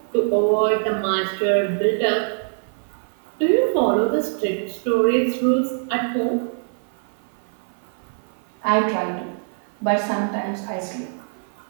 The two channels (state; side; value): silent; left; 56 dB below the other